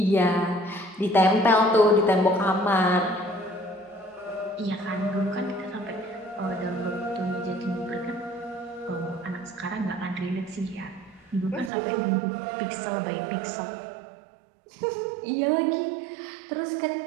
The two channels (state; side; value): drops out; left; at 11.7 s